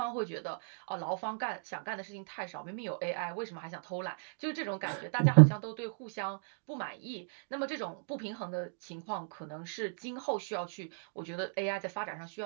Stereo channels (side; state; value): left; silent; digital silence